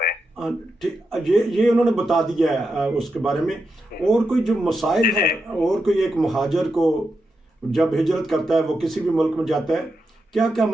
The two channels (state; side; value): normal; both; correlation 0.86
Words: یہ انہوں نے بتا دیا ہے اس کے بارے میں. اور کوئی جو مسائل ہے, اور کوئی ایک مہاجر کو जब हिजरत करता है, वो किसी भी मुल्क में जाता है, क्या क्या